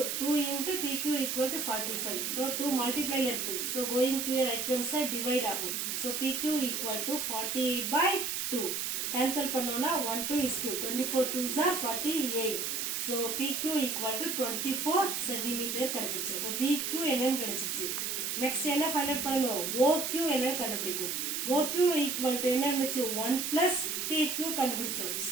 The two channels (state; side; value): noise; right; hiss, 1 dB below the sound